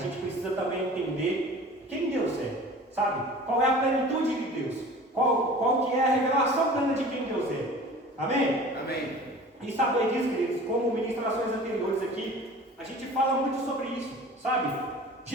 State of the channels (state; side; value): normal; both; correlation 0.42